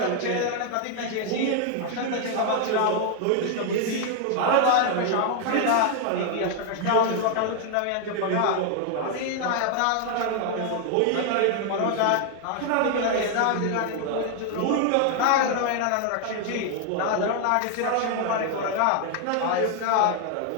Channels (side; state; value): both; different; correlation 0.00